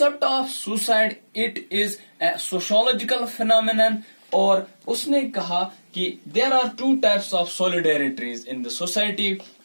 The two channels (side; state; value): both; inverted; correlation -1.00